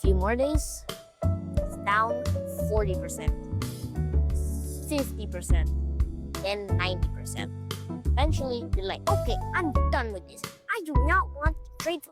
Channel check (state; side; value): identical; both; correlation 1.00